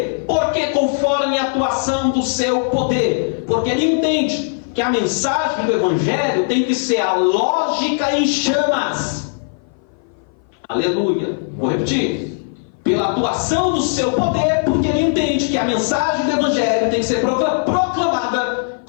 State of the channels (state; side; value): silent; right; 58 dB below the other